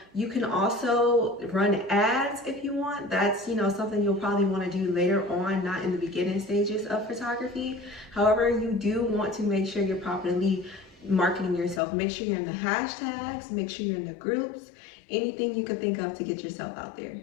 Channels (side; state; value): right; drops out; at 11.8 s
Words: You can also run ads if you want. That's, something you'll probably want to do later on, not in the beginning stages of photography. However, you do want to make sure you're properly marketing yourself. Make sure you're in the hashtags, make sure you're in the groups, anything you can think of to get yourself out there.